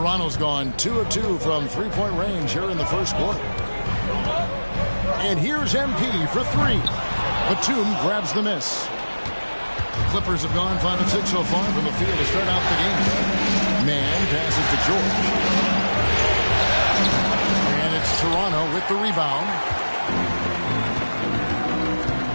gone 2 of 2 from 3-point range here in the first quarter. And here's MP for 3. Batum grabs the miss. The Clippers have gone 5 of 6 so far from the field to start out the game. Man passes to George. And it's Toronto with the rebound.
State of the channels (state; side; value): inverted; both; correlation -1.00